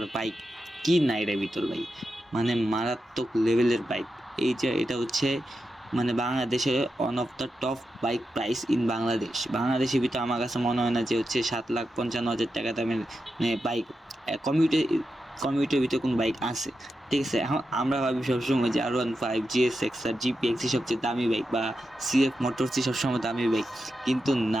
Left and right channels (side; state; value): both; normal; correlation 0.88